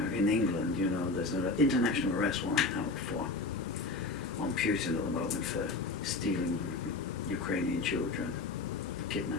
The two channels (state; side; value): quieter; right; 3.6 dB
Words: In England, you know, there's an international arrest warrant out on Putin at the moment for stealing Ukrainian children,